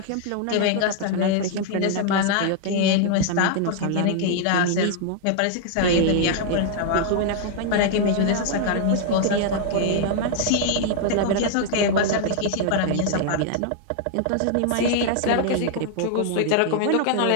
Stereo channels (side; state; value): both; different; correlation 0.00